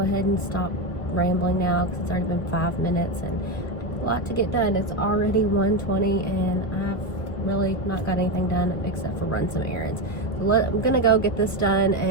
and stop rambling now because it's already been 5 minutes and a lot to get done. It's already 1:20 and I've really not got anything done except for run some errands. So I'm gonna go get this done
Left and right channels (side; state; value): right; late; 1.4 ms